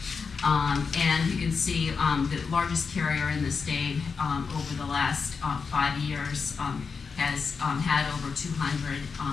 And you can see the largest carrier in the state over the last 5 years has had over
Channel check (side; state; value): right; quieter; 5.3 dB